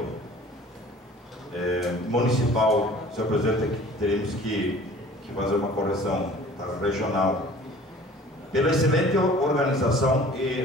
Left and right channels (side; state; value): both; normal; correlation 0.48